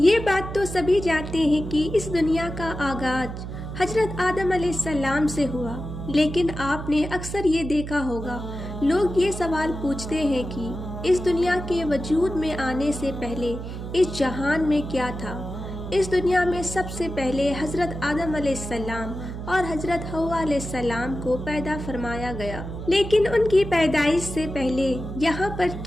بات تو سبھی جانتے ہیں کہ اس دنیا کا آغاز حضرت آدم علیہ السلام سے ہوا، لیکن آپ نے اکثر یہ دیکھا ہوگا لوگ یہ سوال پوچھتے ہیں کہ اس دنیا کے وجود میں آنے سے پہلے اس جہان میں کیا تھا۔ اس دنیا میں سب سے پہلے حضرت آدم علیہ السلام اور حضرت حوا علیہ السلام کو پیدا فرمایا گیا، لیکن ان کی پیدائش سے پہلے یہاں پر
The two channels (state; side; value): noise; right; hum, 8 dB below the sound